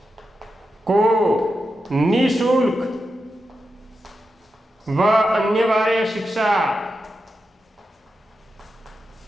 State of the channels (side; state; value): both; normal; correlation 0.89